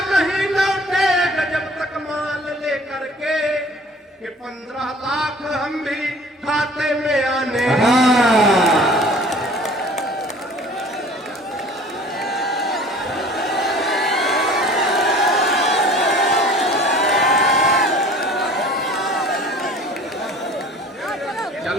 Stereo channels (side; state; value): both; normal; correlation 0.48